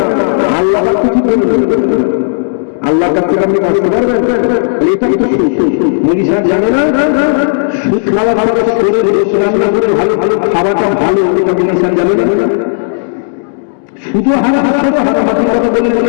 না। আল্লাহ কিছু বলবেন, আল্লাহর কাছ থেকে আপনি বাঁচতে পারবেন? এটাই তো মুড়ি সাহেব জানে না সুদ খাওয়া ভালো, শরীর রান্না করে ভালো ভালো খাওয়াটা ভালো, এটা মুড়ি সাহেব জানে না। শুধু হারাম হারামাতির কথা বলে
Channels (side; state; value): right; silent; digital silence